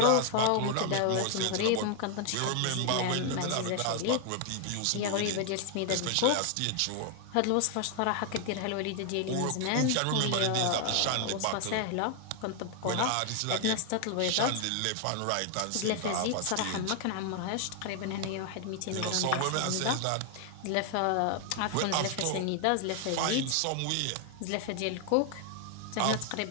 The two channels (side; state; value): both; different; correlation 0.00